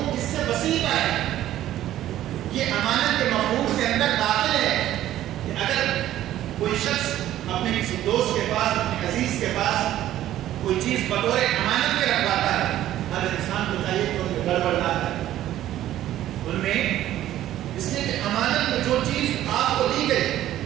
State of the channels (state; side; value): quieter; left; 13.1 dB